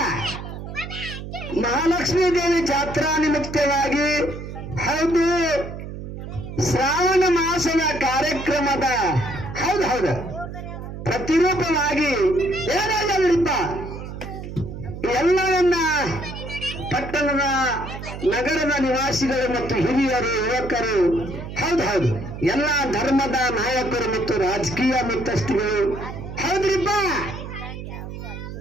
ಮಹಾಲಕ್ಷ್ಮೀ ದೇವಿ ಜಾತ್ರಾ ನಿಮಿತ್ತವಾಗಿ ಹೌದು ಶ್ರಾವಣ ಮಾಸದ ಕಾರ್ಯಕ್ರಮದ ಹೌದು ಹೌದು ಪ್ರತಿರೂಪವಾಗಿ ಏನಾಗ್ಯವ್ರಿಪ್ಪ ಎಲ್ಲವನ್ನ ಪಟ್ಟಣದ ನಗರದ ನಿವಾಸಿಗಳು ಮತ್ತು ಹಿರಿಯರು ಯುವಕರು ಹೌದು ಹೌದು ಎಲ್ಲ ಧರ್ಮದ ನಾಯಕರು ಮತ್ತು ರಾಜಕೀಯ ಮುಖ್ಯಸ್ಥಿಗಳು ಹೌದ್ರಿಪ್ಪ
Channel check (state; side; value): noise; right; hum, 9 dB below the sound